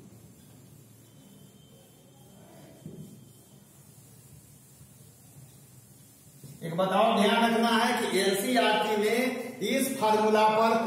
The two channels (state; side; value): identical; both; correlation 1.00